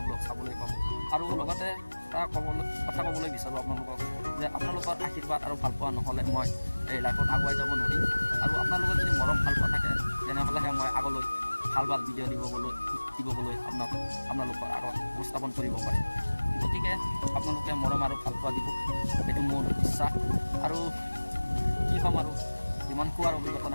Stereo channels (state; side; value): inverted; both; correlation -1.00